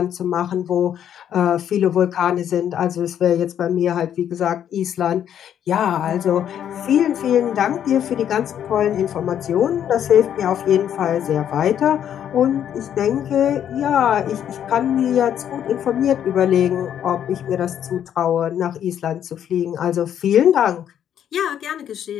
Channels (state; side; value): quieter; right; 9.7 dB